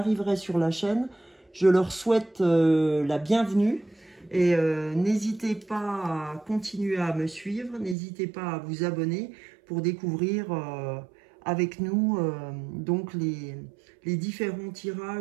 sur la chaîne, je leur souhaite la bienvenue. Et n'hésitez pas à continuer à me suivre, n'hésitez pas à vous abonner pour découvrir avec nous donc les différents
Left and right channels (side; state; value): left; drops out; at 8.0 s